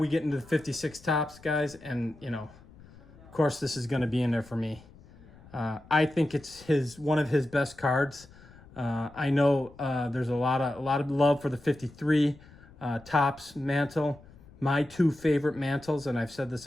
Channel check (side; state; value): left; noise; rumble, 23 dB below the sound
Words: get into the 56 Topps, guys, and you know, of course this is going to be in there for me. I think it's one of his best cards. I know there's a lot of love for the 53 Topps mantle. My two favorite mantles, and I've said this